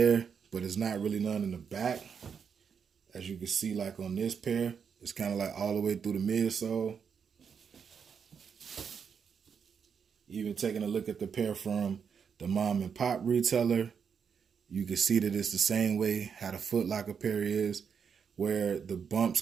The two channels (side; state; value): left; quieter; 6.7 dB